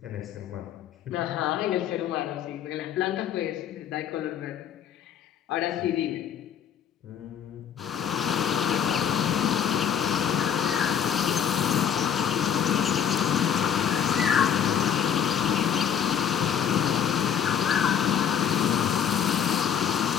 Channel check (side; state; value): right; quieter; 8.5 dB